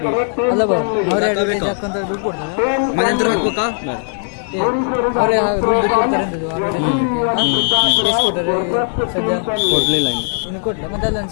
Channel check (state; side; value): silent; right; 56 dB below the other